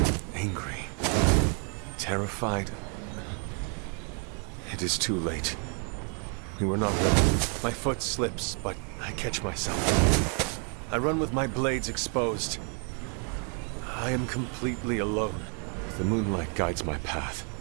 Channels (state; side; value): quieter; left; 39.4 dB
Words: Angry. Terrified. It is too late. We were not ready. My foot slips, but I catch myself. I run with my blades exposed. I am completely alone. The moonlight guides my path.